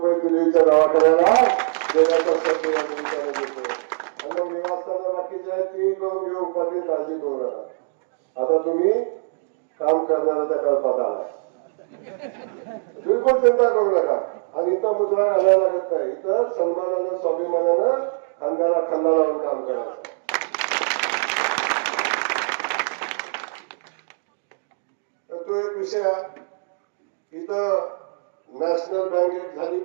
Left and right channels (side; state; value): left; silent; digital silence